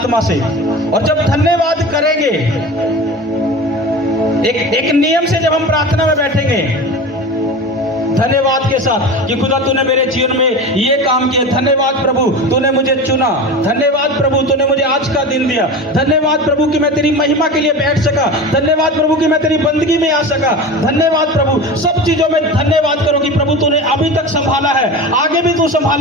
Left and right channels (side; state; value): both; normal; correlation 0.31